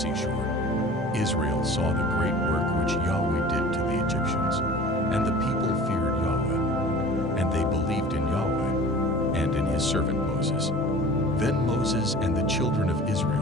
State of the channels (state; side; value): normal; both; correlation 0.42